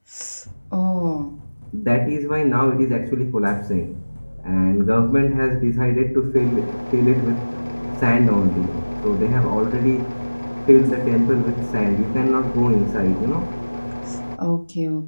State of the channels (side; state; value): both; inverted; correlation -1.00